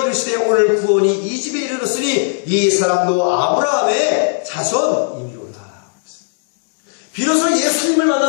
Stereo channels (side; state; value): right; silent; 68 dB below the other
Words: 이르시되 오늘 구원이 이 집에 이르렀으니 이 사람도 아브라함의 자손이니로라. 비로소 예수님을